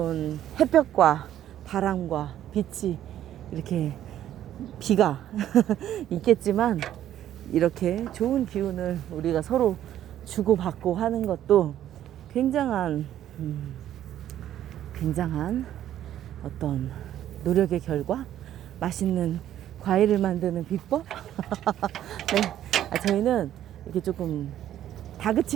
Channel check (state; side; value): quieter; left; 11.7 dB